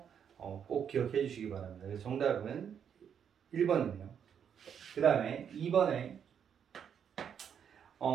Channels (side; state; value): left; quieter; 8.0 dB